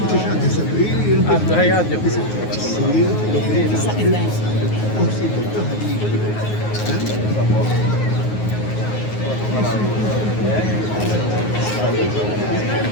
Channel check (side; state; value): right; late; 9.5 ms